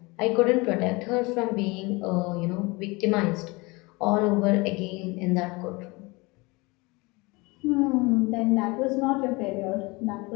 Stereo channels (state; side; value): quieter; right; 25.1 dB